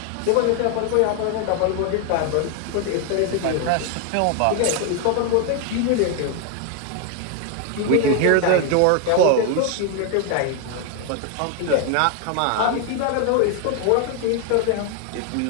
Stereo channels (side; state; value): both; different; correlation 0.01